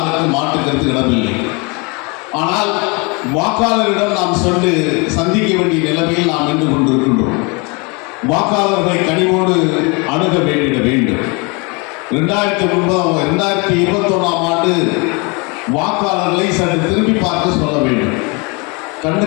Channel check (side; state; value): right; quieter; 30.1 dB